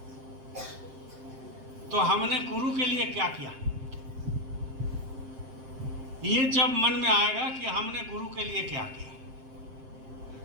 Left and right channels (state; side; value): late; left; 7.6 ms